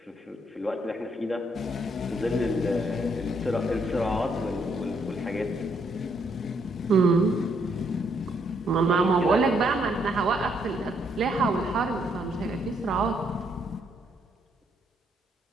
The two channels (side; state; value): both; normal; correlation 0.72